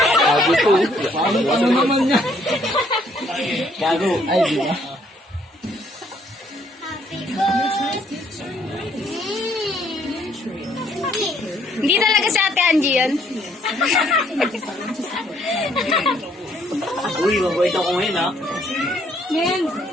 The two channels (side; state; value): both; normal; correlation 0.66